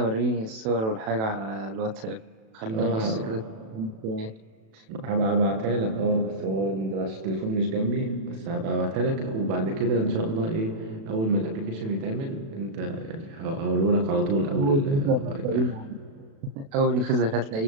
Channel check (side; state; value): left; late; 36 ms